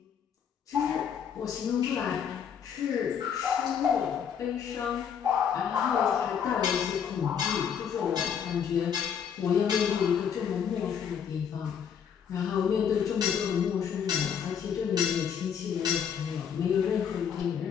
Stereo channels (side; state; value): right; quieter; 7.8 dB